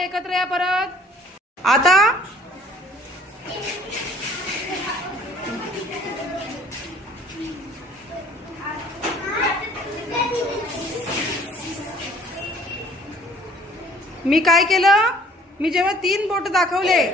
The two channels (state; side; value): normal; both; correlation 0.55